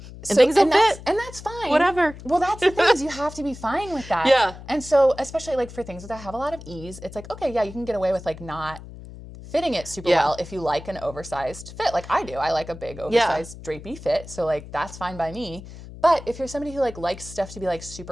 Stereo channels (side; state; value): left; noise; hum, 15 dB below the sound